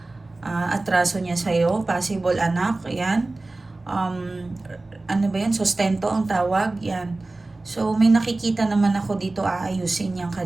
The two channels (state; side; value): quieter; left; 3.1 dB